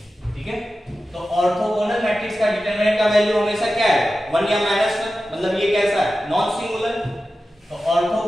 ठीक है। तो ऑर्थोगोनल मैट्रिक्स का डिटरमिनेंट का वैल्यू हमेशा क्या है? 1 या -1, मतलब ये कैसा है? Non singular. तो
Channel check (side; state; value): both; normal; correlation 0.93